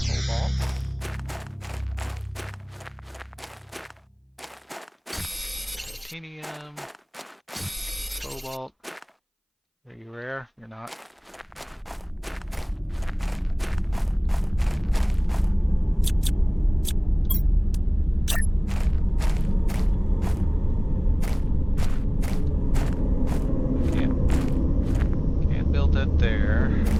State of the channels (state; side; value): identical; both; correlation 1.00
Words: Titanium, cobalt. Are you rare? You're not. Can't build that there.